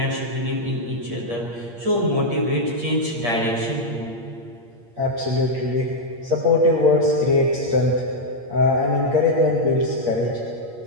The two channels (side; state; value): left; late; 8.6 ms